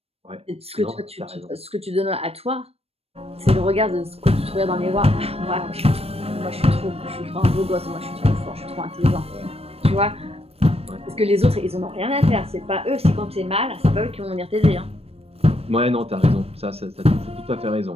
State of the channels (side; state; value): left; late; 0.29 ms